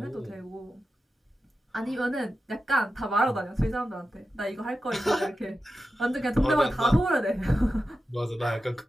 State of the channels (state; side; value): normal; both; correlation 0.91